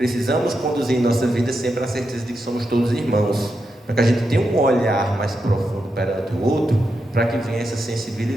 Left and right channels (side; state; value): both; normal; correlation 0.86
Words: conduzir em nossa vida sempre a certeza de que somos todos irmãos, para que a gente tenha um olhar mais profundo perante o outro, para que venha essa